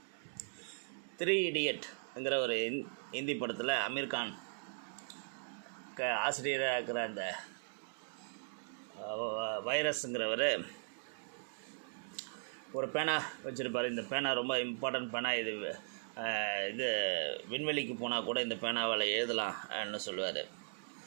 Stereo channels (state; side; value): silent; left; digital silence